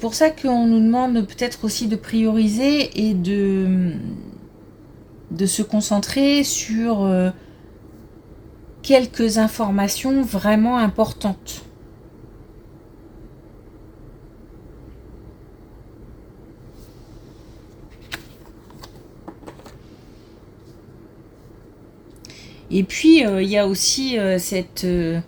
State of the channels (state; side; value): identical; both; correlation 1.00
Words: ça qu'on nous demande peut-être aussi de prioriser et de se concentrer sur quelques informations vraiment importantes. Et puis, il y a aussi